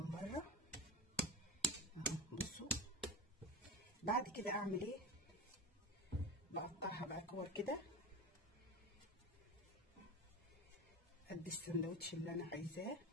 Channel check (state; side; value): normal; both; correlation 0.27